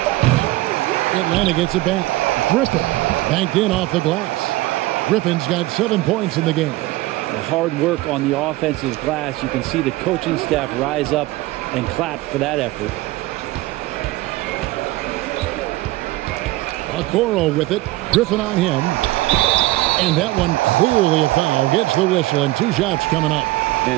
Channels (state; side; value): quieter; left; 18.6 dB